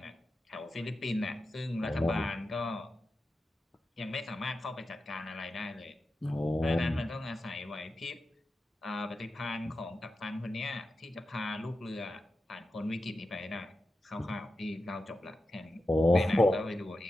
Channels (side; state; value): both; normal; correlation 0.91